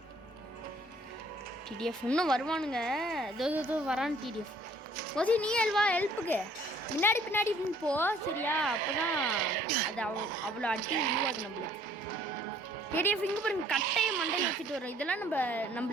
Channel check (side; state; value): both; normal; correlation 0.59